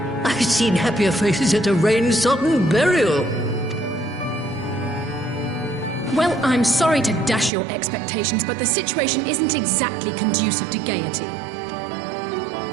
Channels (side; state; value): left; drops out; at 7.5 s